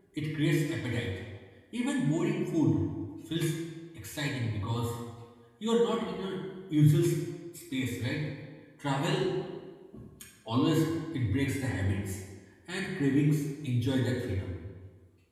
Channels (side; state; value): both; identical; correlation 1.00